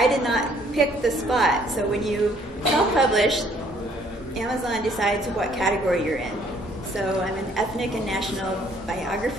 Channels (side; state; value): both; normal; correlation 0.62